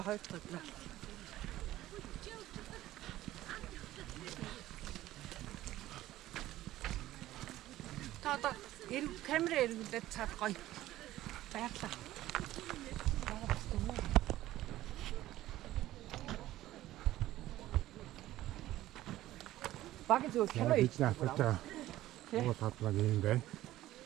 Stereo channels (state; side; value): quieter; left; 15.0 dB